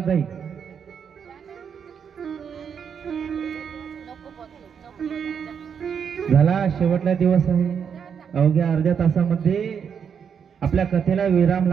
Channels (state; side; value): quieter; left; 7.2 dB